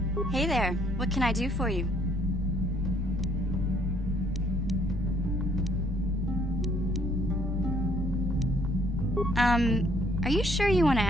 Hey there, what can I do for you? Are you sure you want to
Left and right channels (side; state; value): both; normal; correlation 0.65